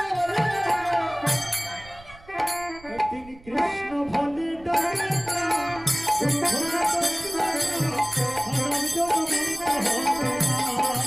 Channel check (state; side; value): noise; right; rumble, 21 dB below the sound